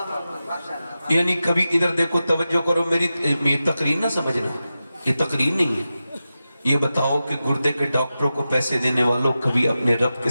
یعنی کبھی ادھر دیکھو، توجہ کرو، میری تقریر نہ سمجھنا، یہ تقریر نہیں ہے۔ یہ بتاؤ کہ گردے کے ڈاکٹروں کو پیسے دینے والوں کبھی اپنے رب کے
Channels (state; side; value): inverted; both; correlation -0.92